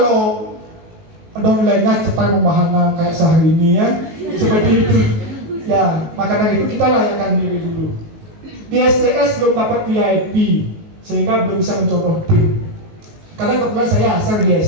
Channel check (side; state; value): left; late; 19 ms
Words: downline-nya cepat membahana kayak sehari ini ya. Seperti itu. Ya, maka dari itu kita layakkan diri dulu. Di STS belum dapat VIP, sehingga belum bisa mencontoh tim. Karena kebetulan saya asal di